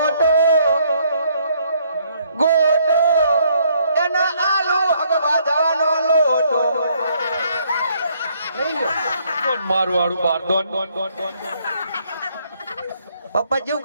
ગોટો એના આલુ હગવા જવાનો લોટો લઈ લ્યો કોણ મારું વાળું બાર દોન. પપ્પા જેવું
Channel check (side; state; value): both; inverted; correlation -0.67